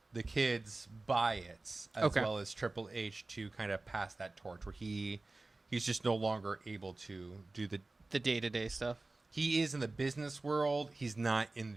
the kids buy it, as well as Triple H to kind of pass that torch where he's just no longer able to do the day-to-day stuff. He is in the business world. He's not in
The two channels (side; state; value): left; quieter; 3.2 dB